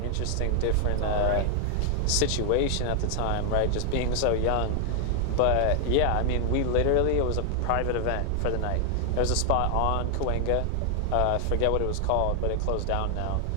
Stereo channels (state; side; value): different; both; correlation 0.00